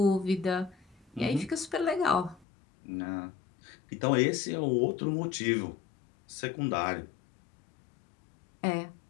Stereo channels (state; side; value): drops out; right; at 2.5 s